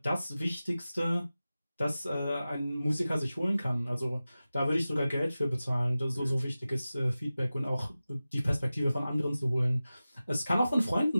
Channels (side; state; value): both; inverted; correlation -0.95